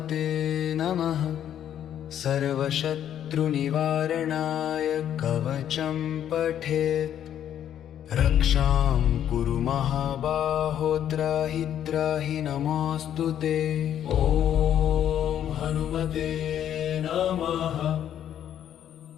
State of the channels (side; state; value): right; quieter; 10.2 dB